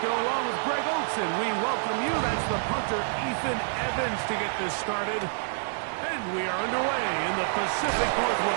along with Greg Olsen, we welcome you. That's the punter Ethan Evans to get this started. And we are underway in the Pacific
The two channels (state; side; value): silent; left; digital silence